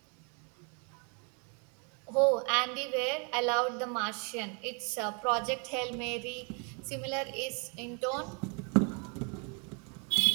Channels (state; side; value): quieter; left; 35.9 dB